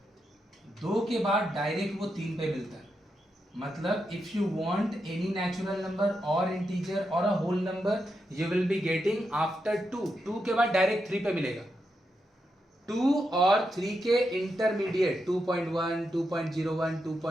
2 के बाद डायरेक्ट वो 3 पे मिलता है। मतलब if you want any natural number और इंटीजर और a whole number, you will be getting after 2 के बाद डायरेक्ट 3 पे मिलेगा। 2 और 3 के इंटरमीडिएट 2.1 2.01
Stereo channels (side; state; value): both; normal; correlation 0.85